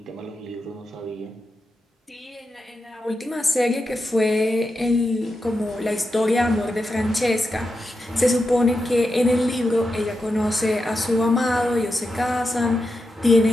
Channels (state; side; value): normal; both; correlation 0.88